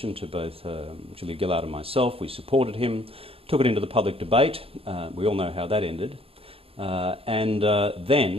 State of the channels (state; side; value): late; left; 0.27 ms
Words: to both Julia Gillard and myself. We supported him, took it into the public debate. We all know how that ended. And